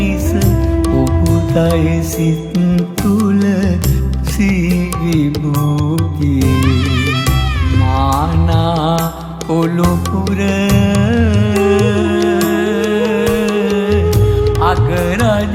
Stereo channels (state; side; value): identical; both; correlation 1.00